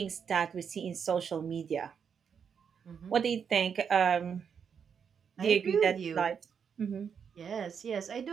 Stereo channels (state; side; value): quieter; left; 7.0 dB